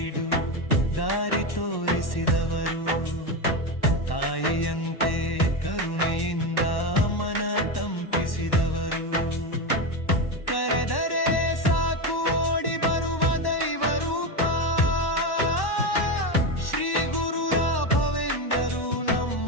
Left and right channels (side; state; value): right; late; 1.1 ms